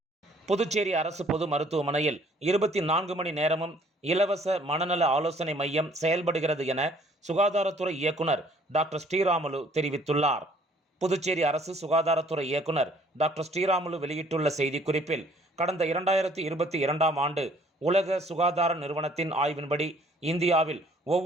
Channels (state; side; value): normal; both; correlation 0.59